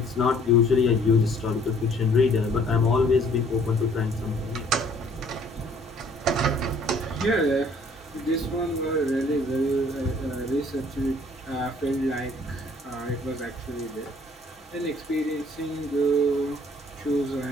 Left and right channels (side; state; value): both; normal; correlation 0.58